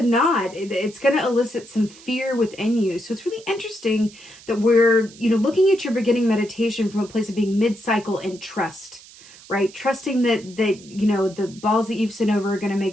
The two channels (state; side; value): noise; right; hiss, 21 dB below the sound